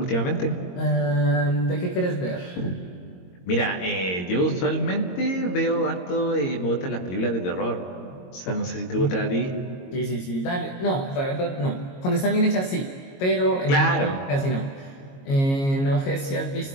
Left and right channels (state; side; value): late; right; 22 ms